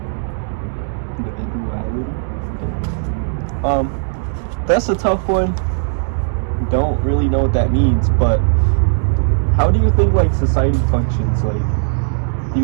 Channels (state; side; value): silent; left; digital silence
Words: That's a tough one. Don't really know what that means, but how do you think like society functions? Like, do